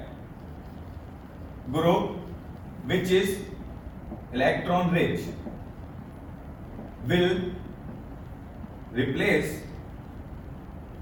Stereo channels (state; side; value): identical; both; correlation 1.00